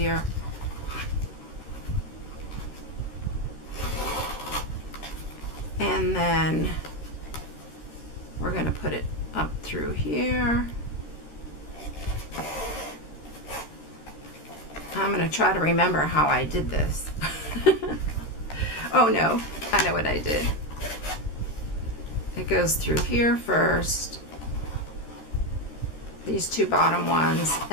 And then we're going to put it up through here. I'm going to try to remember how I did this. Oh no, I know what I did. It goes through here first, these 2 bottom ones,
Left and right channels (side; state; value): right; late; 13 ms